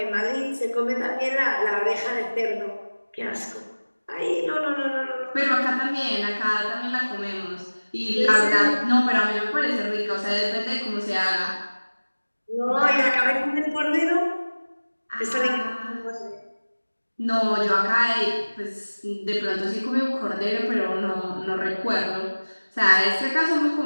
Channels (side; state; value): both; inverted; correlation -1.00